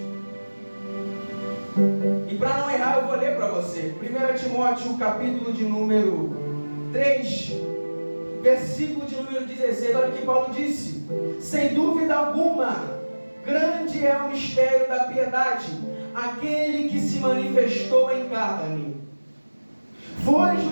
E para não errar, eu vou ler para você 1 Timóteo, capítulo de número 3, versículo de número 16. Olha o que Paulo disse: sem dúvida alguma, grande é o mistério da piedade. aquele que se manifestou em carne, foi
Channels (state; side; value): inverted; both; correlation -1.00